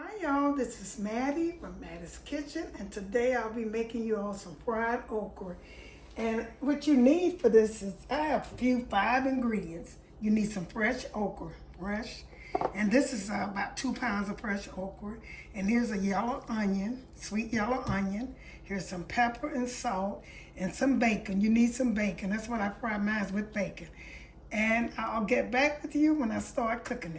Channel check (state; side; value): identical; both; correlation 1.00